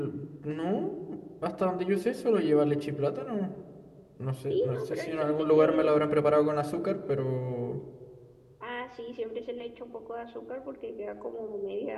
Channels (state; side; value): identical; both; correlation 1.00